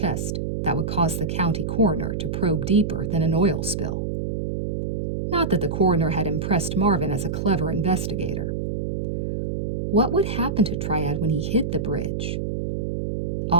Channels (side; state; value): right; noise; hum, 1 dB below the sound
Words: that would cause the county coroner to probe deeper than an oil spill. Not that the coroner had impressed Marvin as a clever investigator. What would happen to Triad when he hit the bridge?